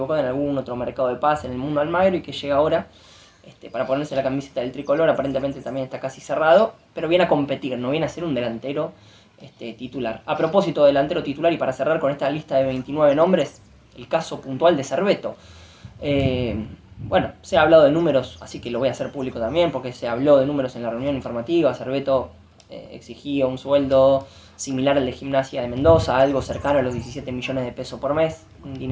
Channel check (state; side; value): identical; both; correlation 1.00